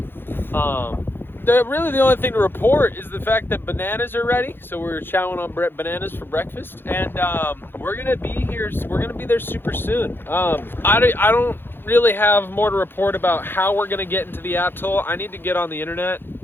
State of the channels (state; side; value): late; right; 0.10 ms